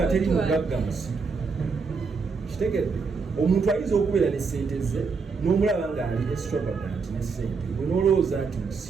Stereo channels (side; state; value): left; quieter; 4.9 dB